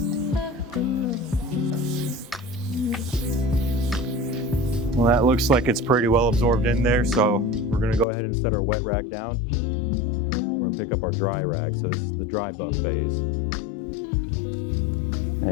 Well, that looks like it's pretty well absorbed in there, so we're gonna go ahead and set our wet rag down. We're gonna pick up our dry rag, so this is the dry buff phase.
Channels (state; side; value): drops out; right; at 8.1 s